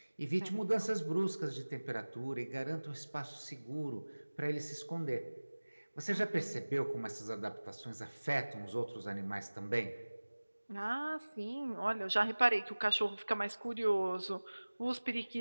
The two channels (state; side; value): inverted; both; correlation -1.00